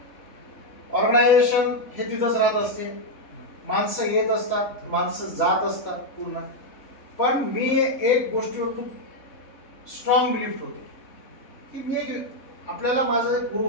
ऑर्गनायझेशन हे तिथंच राहत असते, माणसं येत असतात, माणसं जात असतात पूर्ण. पण मी एक गोष्टीवर खूप स्ट्रॉंग बिलीफ होते की मी एक आपल्याला माझे एक गुरु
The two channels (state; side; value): late; right; 3.7 ms